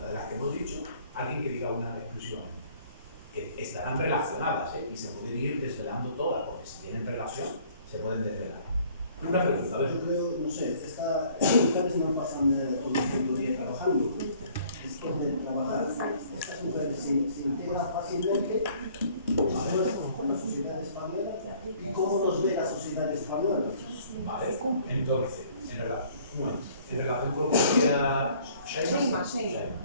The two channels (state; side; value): inverted; both; correlation -0.57